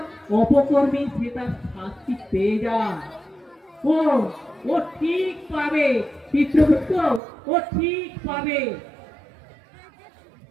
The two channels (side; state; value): left; drops out; at 7.2 s